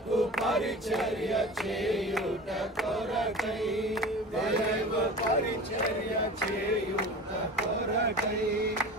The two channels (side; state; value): both; normal; correlation 0.36